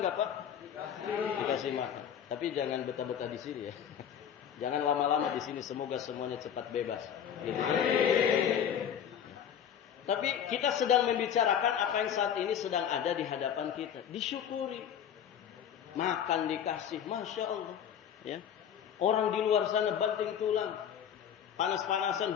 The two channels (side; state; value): right; quieter; 8.8 dB